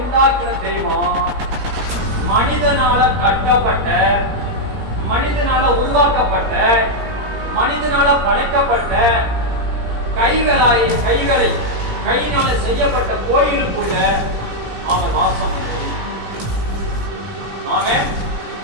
உண்டாக்கின தெய்வம் மனிதனால கட்டப்பட்ட, மனிதனால உருவாக்கப்பட்ட, மனிதனால படைக்கப்பட்ட கையினால செய்யப்பட்ட கோயிலுக்குள்ள அவன் வாசம் பண்ணுவது. ஆமே,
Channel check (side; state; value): left; late; 17 ms